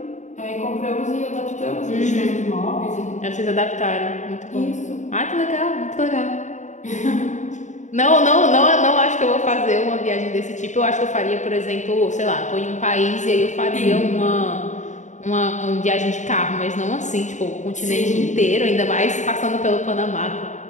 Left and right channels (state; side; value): late; right; 0.35 ms